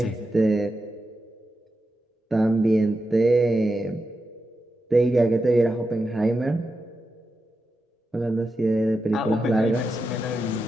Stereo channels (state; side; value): normal; both; correlation 0.88